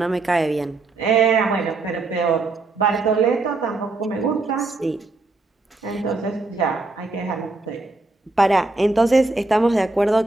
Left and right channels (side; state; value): left; quieter; 3.3 dB